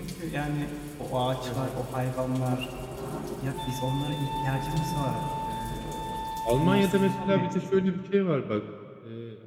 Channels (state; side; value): identical; both; correlation 1.00